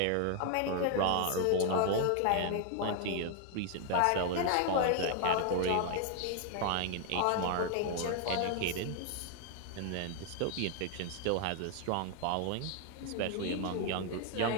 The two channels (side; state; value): both; different; correlation 0.00